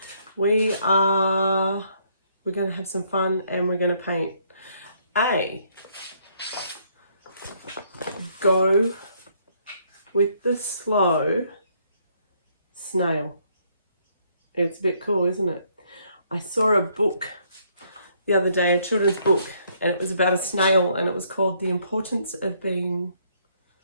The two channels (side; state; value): both; inverted; correlation -0.69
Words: We're going to have some fun and we're going to paint go with the slow snail. It's a bit cool, isn't it? I saw a book the other day, a children's book, and it was about a snail, and it was called The Importance of Being